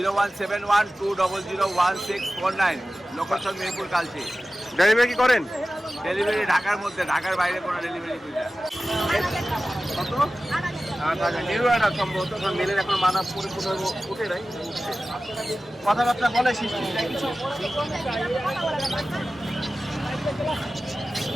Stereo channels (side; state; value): both; normal; correlation 0.95